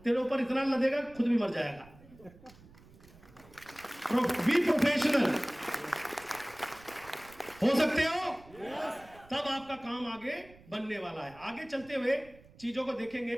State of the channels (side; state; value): right; noise; rumble, 24 dB below the sound